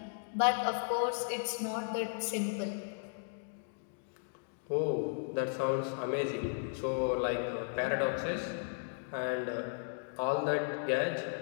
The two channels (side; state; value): right; silent; digital silence